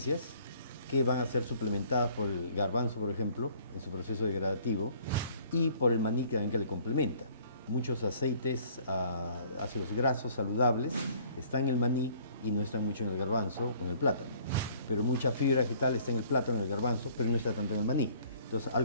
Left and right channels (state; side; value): inverted; both; correlation -0.57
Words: que van a ser suplementadas por el garbanzo, por ejemplo, en su proceso degradativo, y por el maní que le complementa. Muchos aceites, ácidos grasos saludables, están en el maní y no están mucho en el garbanzo o en el plátano. Pero mucha fibra vegetal está en el plátano y en el garbanzo, pero no está tanto en el maní. Entonces, al